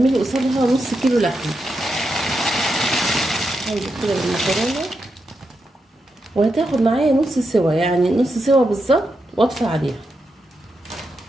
قصادها نص كيلو لحمه. هنزل كده بالمكرونه وهتاخد معايا نص سوا، يعني نص سوا بالظبط، واطفي عليها.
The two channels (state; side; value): normal; both; correlation 0.85